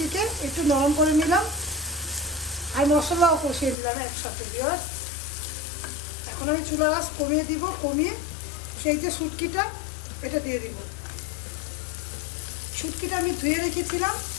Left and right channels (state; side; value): drops out; right; at 3.8 s